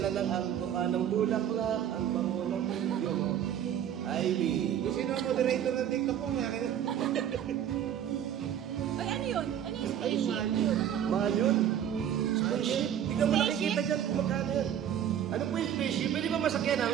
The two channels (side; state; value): left; quieter; 9.9 dB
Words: ng ang mukha ng bulaklak, ang bango ng video. Ivy. Kung sino ang moderator ng TikTok ko, may akin. Ay, ano yun? Ano yung spaceship? Mahal yun. Spaceship. Tingnan mo Spaceship? nakikita dyan kung magkano yun. Ano po yung spaceship? Pwede ba masakyan